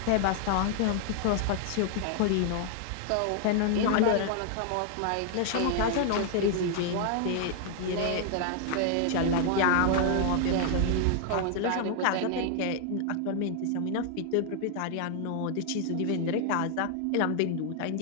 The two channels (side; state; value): both; different; correlation 0.00